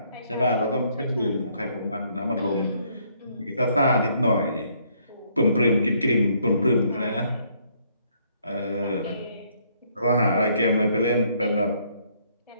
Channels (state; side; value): inverted; both; correlation -0.68